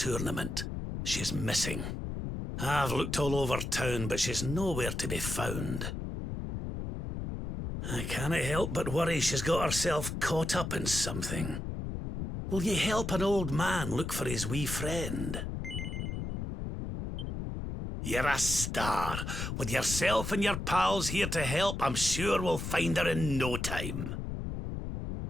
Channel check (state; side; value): noise; left; rumble, 5 dB below the sound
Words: She's missing. I've looked all over town, but she's nowhere to be found. I can't help but worry she's got herself caught up in something. Will you help an old man look for his wee friend? You're a star. With yourself and your pals here to help, I'm sure we'll find her in no time.